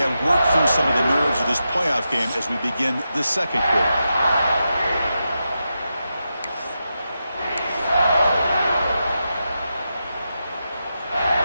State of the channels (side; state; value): both; inverted; correlation -0.88